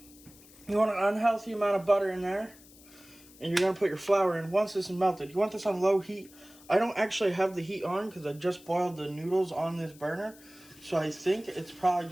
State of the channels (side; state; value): left; noise; hiss, 23 dB below the sound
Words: You want an unhealthy amount of butter in there. And you're going to put your flour in. Once this is melted, you want this on low heat. I don't actually have the heat on because I just boiled the noodles on this burner. So I think it's probably